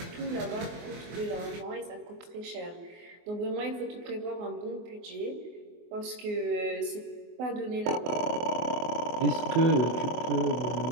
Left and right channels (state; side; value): late; left; 24 ms